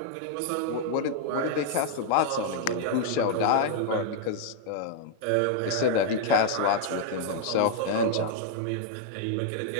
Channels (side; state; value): both; different; correlation -0.01